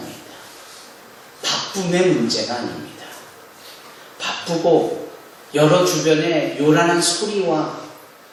바쁨의 문제가 아닙니다. 바쁘고 여러 주변에 요란한 소리와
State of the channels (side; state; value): both; identical; correlation 1.00